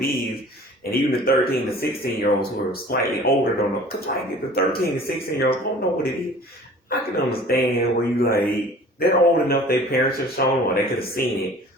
is. And even the 13 to 16-year-olds who are slightly older don't know. Because like the 13 to 16-year-olds don't know what it is. I can understand where you like, they're old enough, their parents have shown, or they could have seen it,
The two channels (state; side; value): normal; both; correlation 0.46